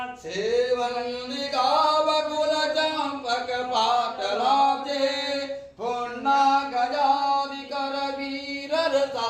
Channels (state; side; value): identical; both; correlation 1.00